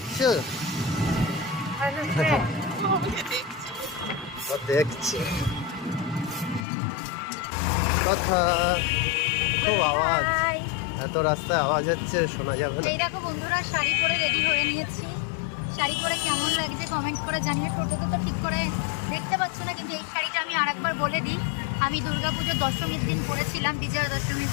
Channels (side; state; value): right; drops out; at 6.7 s